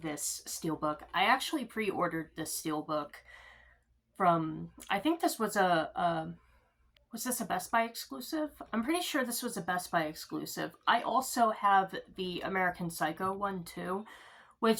steelbook. I actually pre-ordered this steelbook from, I think this was was this a Best Buy exclusive? I'm pretty sure this was a Best Buy exclusive. I also have the American Psycho one too,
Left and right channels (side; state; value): both; identical; correlation 1.00